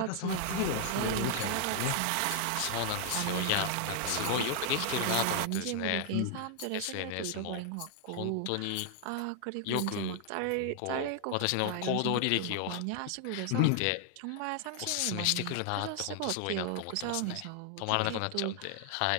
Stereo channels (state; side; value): different; both; correlation 0.00